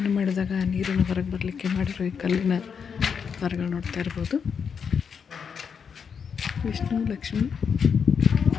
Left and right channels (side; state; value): right; quieter; 6.6 dB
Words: ಮಾಡಿದಾಗ ನೀರನ್ನು ಹೊರಗೆ ಬರಲಿಕ್ಕೆ ಮಾಡಿರೋ ಈ ಕಲ್ಲಿನ ಮರಗಳು ನೋಡ್ತಾ ಇರ್ಬೋದು. ವಿಷ್ಣು, ಲಕ್ಷ್ಮಿ,